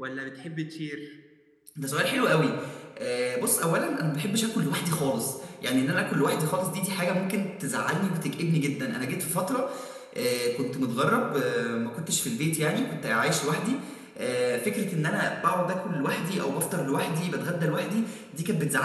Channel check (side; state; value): both; identical; correlation 1.00